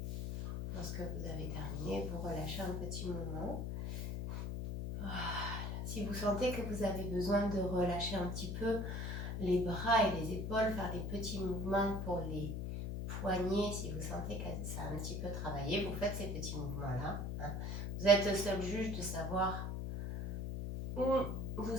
Lorsque vous avez terminé, vous relâchez un petit moment. Voilà. Si vous sentez que vous avez besoin de relâcher un petit peu les bras et les épaules, faire des petits mouvements pour les poignets, si vous sentez que ça a un petit peu travaillé, vous faites ces petits mouvements-là. Hein. Vous êtes seul juge de savoir où vous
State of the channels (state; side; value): noise; left; hum, 3 dB below the sound